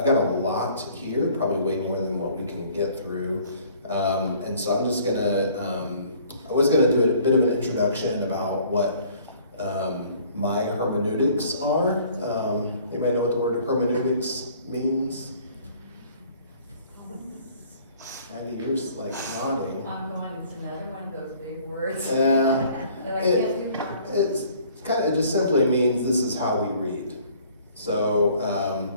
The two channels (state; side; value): inverted; both; correlation -0.55